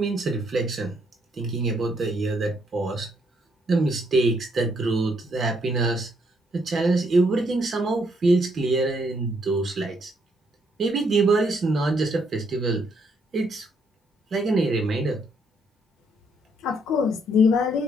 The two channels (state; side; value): normal; both; correlation 0.72